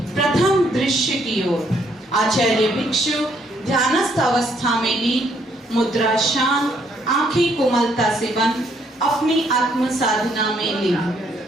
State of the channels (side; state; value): both; normal; correlation 0.70